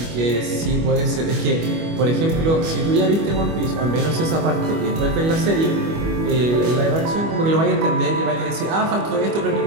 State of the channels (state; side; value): late; left; 25 ms